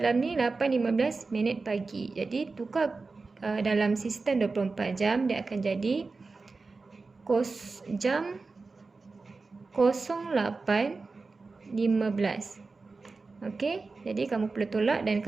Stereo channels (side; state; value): left; quieter; 4.0 dB